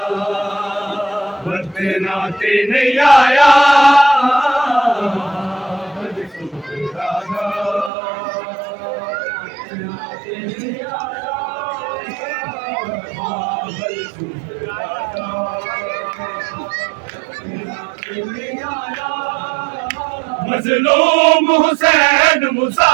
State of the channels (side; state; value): left; drops out; at 7.9 s